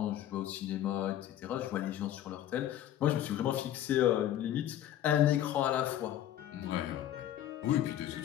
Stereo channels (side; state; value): right; quieter; 11.8 dB